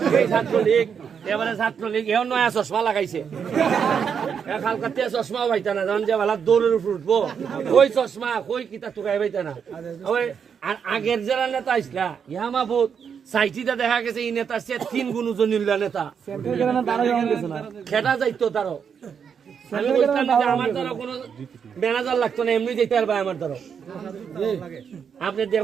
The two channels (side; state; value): left; quieter; 7.0 dB